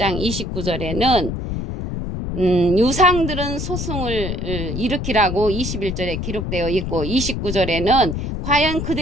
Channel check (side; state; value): left; noise; rumble, 4 dB below the sound